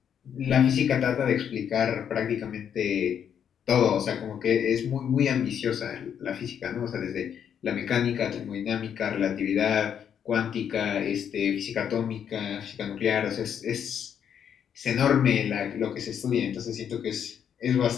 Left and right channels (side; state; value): right; quieter; 8.5 dB